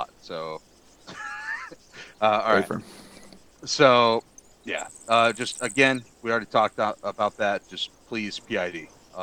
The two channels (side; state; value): both; identical; correlation 1.00